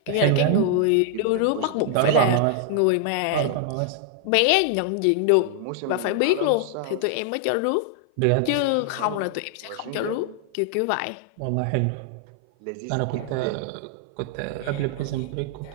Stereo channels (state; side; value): different; both; correlation 0.00